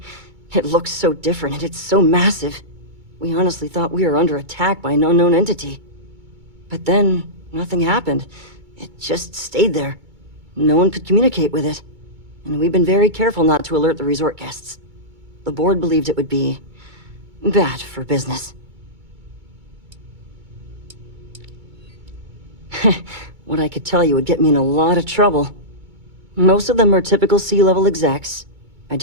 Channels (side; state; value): left; late; 2.2 ms